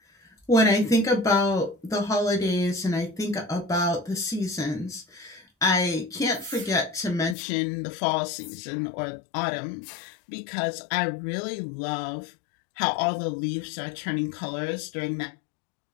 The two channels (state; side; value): drops out; right; at 7.4 s